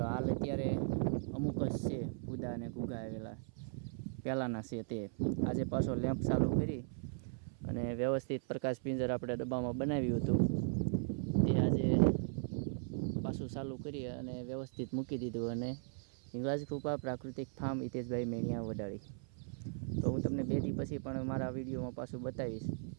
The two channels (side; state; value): left; silent; 53 dB below the other